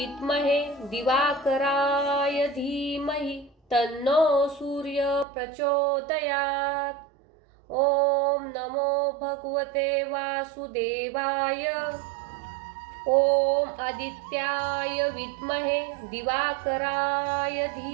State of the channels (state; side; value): drops out; left; at 5.2 s